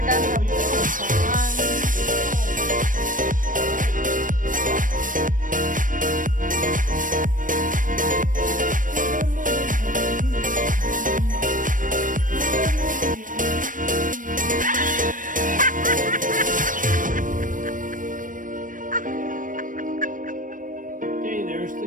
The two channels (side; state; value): left; late; 0.38 ms